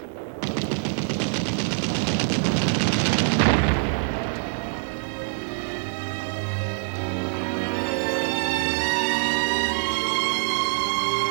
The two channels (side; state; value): left; silent; 62 dB below the other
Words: in a few violent hours.